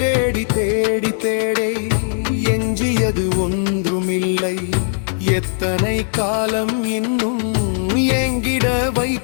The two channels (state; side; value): silent; right; digital silence